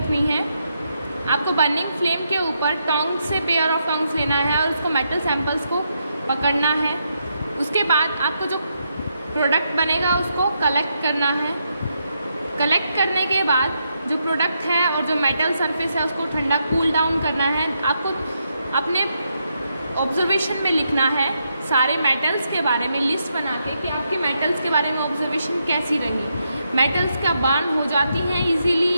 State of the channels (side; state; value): both; inverted; correlation -0.80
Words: है. आपको बर्निंग फ्लेम के ऊपर टोंग से पेयर ऑफ टोंग्स लेना है और उसको मेटल सैंपल्स को पकड़ना है. उसके बाद आपको जो प्रोडक्ट बनेगा उसको कलेक्ट करना है. कलेक्ट करने के बाद जो प्रोडक्ट है और जो मेटल सरफेस है उसको ठंडा कूल डाउन करना है. आपको अपने ऑब्जर्वेशन में लिखना है सारे मेटल्स के बारे में लिस्ट बना के कि आपके मेटल्स के बारे में ऑब्जर्वेशन कैसी रही, मेटल्स का बर्न हो जाती हैं इजीली